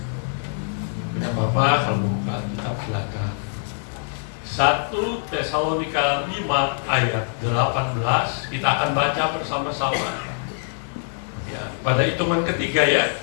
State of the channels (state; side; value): silent; right; 63 dB below the other